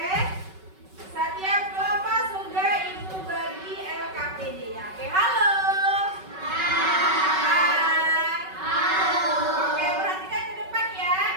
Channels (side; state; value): left; late; 5.3 ms